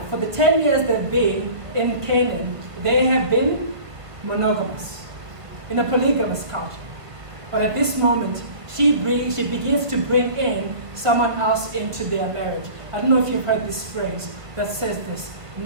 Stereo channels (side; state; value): left; late; 1.2 ms